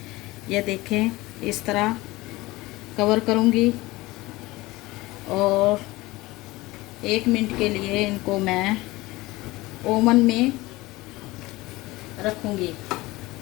ये देखें इस तरह कवर करूँगी और 1 मिनट के लिए इनको मैं ओवन में रखूँगी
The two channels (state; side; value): quieter; right; 20.2 dB